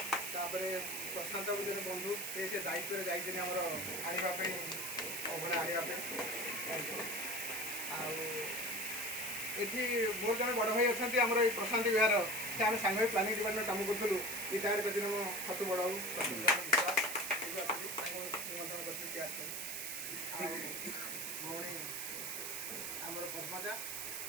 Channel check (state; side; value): noise; right; hiss, 4 dB below the sound